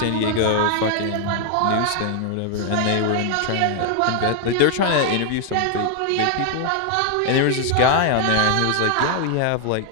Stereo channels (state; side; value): different; both; correlation 0.00